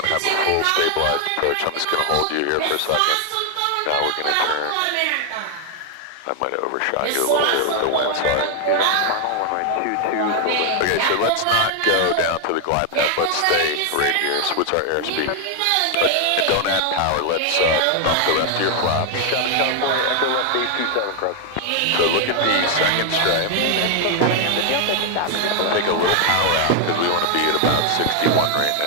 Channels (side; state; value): both; different; correlation 0.00